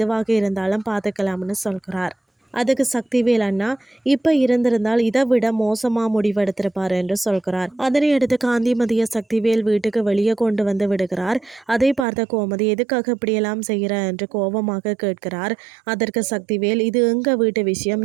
இருந்தாலும் பார்த்துக்கலாம்னு சொல்கிறார். அதுக்கு சக்திவேல் அண்ணா இப்போ இருந்திருந்தால் இதை விட மோசமாக முடிவெடுத்திருப்பார் என்று சொல்கிறார். அதனை அடுத்து காந்திமதியை சக்திவேல் வீட்டுக்கு வெளியே கொண்டு விடுகிறார். அதை பார்த்த கோமதி எதுக்காக இப்படியெல்லாம் செய்கிற என்று கோபமாக கேட்கிறார். அதற்கு சக்திவேல் இது எங்க வீட்டு விஷயம்,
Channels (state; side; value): drops out; left; at 12.1 s